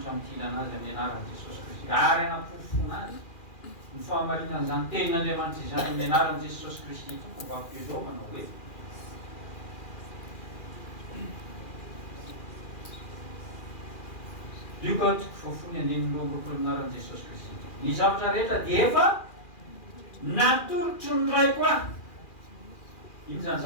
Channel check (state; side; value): late; right; 2.4 ms